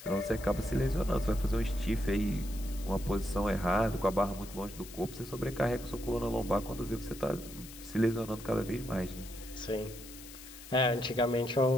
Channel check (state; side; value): noise; left; hiss, 15 dB below the sound